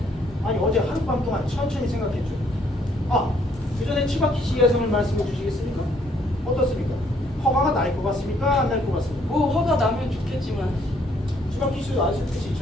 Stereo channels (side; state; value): both; normal; correlation 0.66